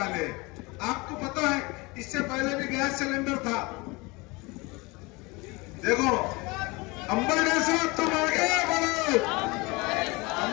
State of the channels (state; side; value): quieter; right; 25.1 dB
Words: हैं। आपको पता है इससे पहले भी गैस सिलेंडर था। देखो अंबटे साहब तुम आगे बढ़ो,